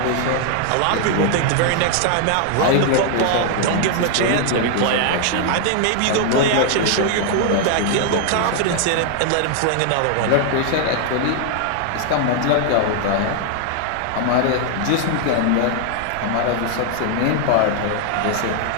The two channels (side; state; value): both; different; correlation 0.00